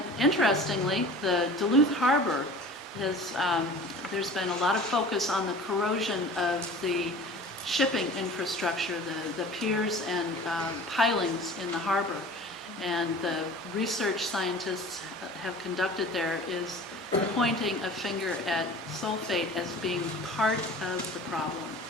interestingly, the Duluth Harbor has, there's been a lot of focus on the corrosion of the shipping infrastructure, the piers and pilings in the harbor. And the research scientists have conducted there is pointing a finger at sulfate as being part of the problem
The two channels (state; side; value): normal; both; correlation 0.41